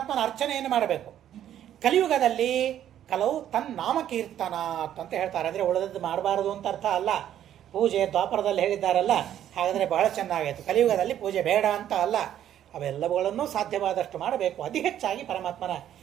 ಅರ್ಚನೆಯನ್ನು ಮಾಡಬೇಕು. ಕಲಿಯುಗದಲ್ಲಿ ಕಲವು ತನ್ನಾಮಕೀರ್ತನ ಅಂತ ಹೇಳ್ತಾರೆ. ಅಂದರೆ ಉಳಿದದ್ದು ಮಾಡಬಾರದು ಅಂತ ಅರ್ಥ ಅಲ್ಲ. ಪೂಜೆ ದ್ವಾಪರದಲ್ಲಿ ಹೇಳಿದ್ದಾರಲ್ಲ, ಹಾಗಾದರೆ ಬಹಳ ಚೆನ್ನಾಗಾಯಿತು. ಕಲಿಯುಗದಲ್ಲಿ ಪೂಜೆ ಬೇಡ ಅಂತ ಅಲ್ಲ, ಅವೆಲ್ಲವುಗಳನ್ನು ಸಾಧ್ಯವಾದಷ್ಟು ಮಾಡಬೇಕು. ಅತಿ ಹೆಚ್ಚಾಗಿ ಪರಮಾತ್ಮನ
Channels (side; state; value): left; quieter; 11.0 dB